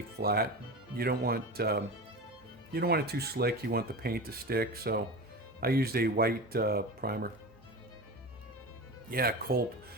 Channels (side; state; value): both; normal; correlation 0.28